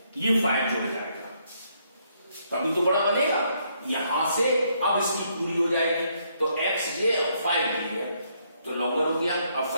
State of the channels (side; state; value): both; inverted; correlation -0.72